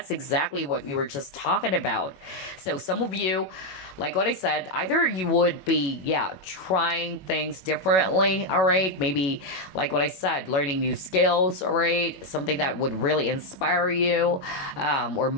exactly what we were just talking about. So some of you, like what I said, either you would be, yeah, trying things differently, all right? Maybe, like what I said, learning new skills, all right? Something that would really inspire you or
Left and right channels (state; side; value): late; right; 21 ms